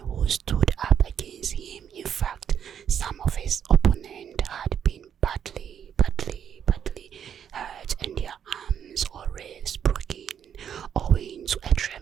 stood up against him, in fact,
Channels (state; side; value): quieter; left; 8.6 dB